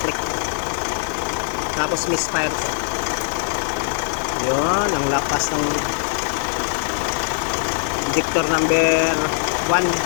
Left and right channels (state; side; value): silent; right; 65 dB below the other